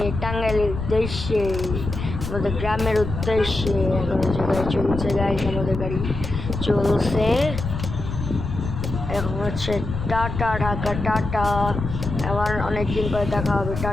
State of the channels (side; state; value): left; noise; rumble, 6 dB below the sound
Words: টাঙ্গাইলের উদ্দেশ্যে, আমাদের গ্রামের উদ্দেশ্যে। এখন হচ্ছে গাড়ি চলছে, গাইস আমাদের গাড়ি চলছে। এখন হচ্ছে টাটা, ঢাকা টাটা। আবার অনেকদিন পরে দেখা হবে,